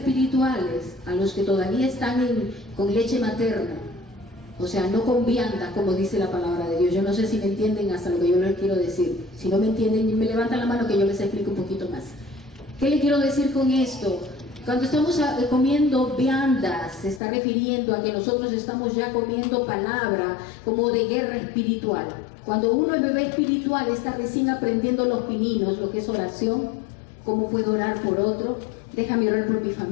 a los que todavía están con leche materna, o sea, no con vianda, como dice la palabra de Dios. Yo no sé si me entienden hasta lo que yo les quiero decir. Si no me entienden, me levantan la mano que yo les explico un poquito más. ¿Qué le quiero decir con esto? Cuando estamos comiendo viandas, se está refiriendo a que nosotros estamos ya comiendo palabra como de guerra espiritual. Cuando uno es bebé espiritual, está recién aprendiendo los pininos, lo que es oración, cómo puedo orar por otro, déjame orar por mi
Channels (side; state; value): right; drops out; at 17.2 s